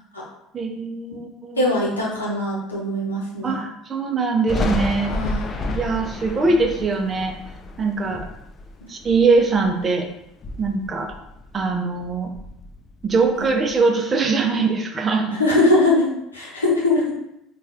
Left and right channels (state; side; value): normal; both; correlation 0.45